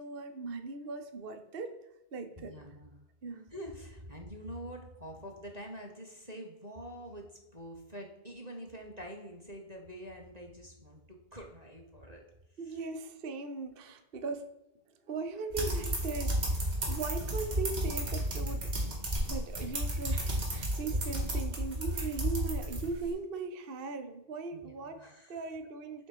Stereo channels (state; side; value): late; left; 2.1 ms